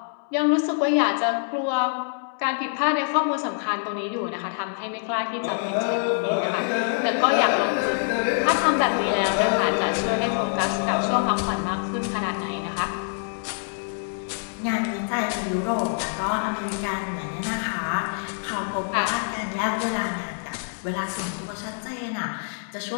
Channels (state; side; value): silent; right; 61 dB below the other